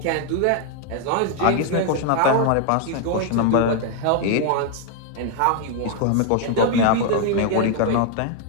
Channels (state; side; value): different; both; correlation 0.00